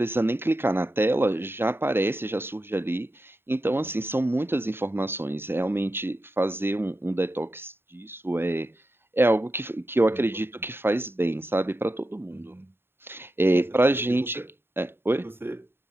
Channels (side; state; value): left; late; 0.11 ms